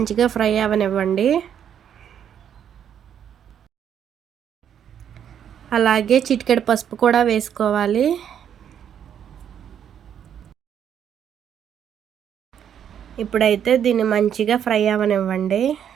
ఫ్రై అవనివ్వండి. అలాగే చిటికెడు పసుపు కూడా వేసుకోవాలి. ఇప్పుడైతే దీన్ని మంచిగా ఫ్రై అవనివ్వండి.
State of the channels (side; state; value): left; quieter; 9.0 dB